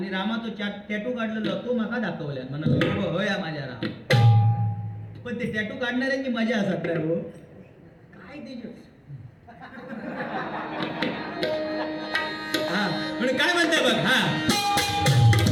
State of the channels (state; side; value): identical; both; correlation 1.00